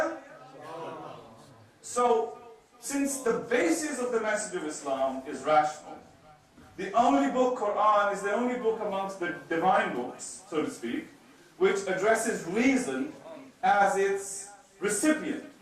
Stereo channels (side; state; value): both; identical; correlation 1.00